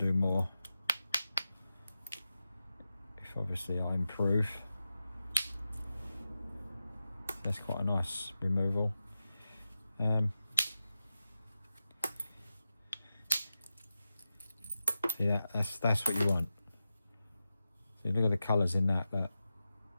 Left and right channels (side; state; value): both; inverted; correlation -0.92